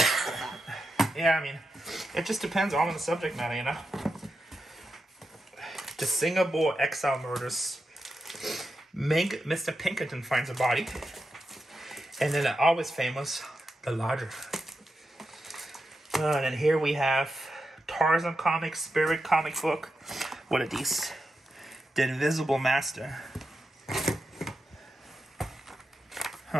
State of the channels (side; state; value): both; normal; correlation 0.88